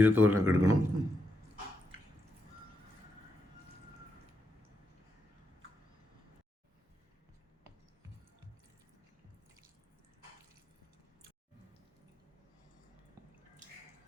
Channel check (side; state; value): both; normal; correlation 0.83